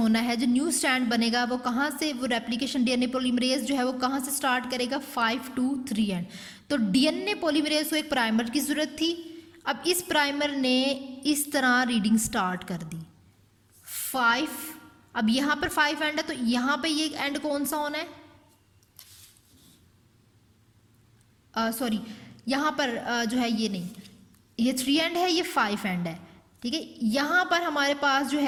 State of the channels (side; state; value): both; identical; correlation 1.00